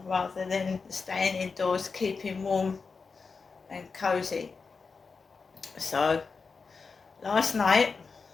rather than staying indoors, keeping warm and cosy. So, last night,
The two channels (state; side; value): quieter; right; 4.8 dB